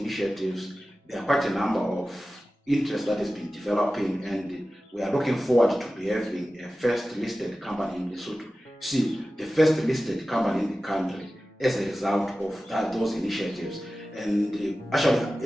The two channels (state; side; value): normal; both; correlation 0.95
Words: there are quite a number of interest that has been developing, and we are looking forward to be having a first listed company in Lesotho. See, the first listed company in the country as a result of those initiatives. And actually,